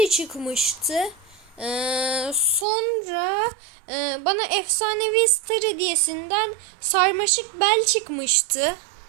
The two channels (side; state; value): left; drops out; at 2.7 s